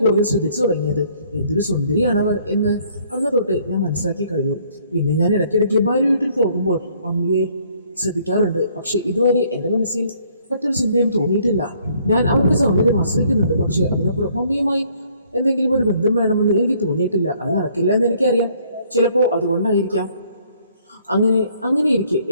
കൂടുതൽ ശ്രദ്ധിച്ചു തുടങ്ങിയത്. എന്തൊരു സുന്ദരിയാണവർ എന്ന് അന്ന് തൊട്ട് ഞാൻ മനസ്സിലാക്കി കഴിഞ്ഞു. പിന്നെ ഞാൻ ഇടയ്ക്കിടയ്ക്ക് ഭാര്യ വീട്ടിൽ പോകുമ്പോൾ മമ്മിയെ ശ്രദ്ധിക്കാറുണ്ട്. പക്ഷെ ഇതുവരെ എൻ്റെ മനസ്സിൽ മറ്റൊരു ചിന്തയും തോന്നിയിട്ടില്ല. ഞാൻ അവരുടെ സൗന്ദര്യം ആശ്രയിക്കുന്നുണ്ട്. പക്ഷെ അതിനപ്പുറം മമ്മിയുമായി എന്തെങ്കിലും ഒരു ബന്ധം വേണമെന്ന് എനിക്ക് തോന്നിയിട്ടില്ല. അത് നടക്കില്ല എന്ന് എനിക്കറിയാം. ചിലപ്പോൾ അതുകൊണ്ടായിരിക്കാം. അങ്ങനെ ഇരിക്കെ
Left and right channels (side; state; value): both; inverted; correlation -0.63